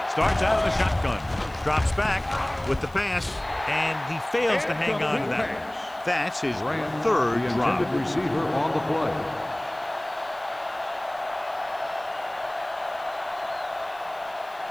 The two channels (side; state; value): left; noise; hiss, 27 dB below the sound